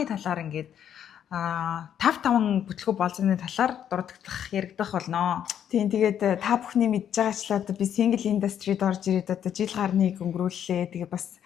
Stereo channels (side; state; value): right; quieter; 9.4 dB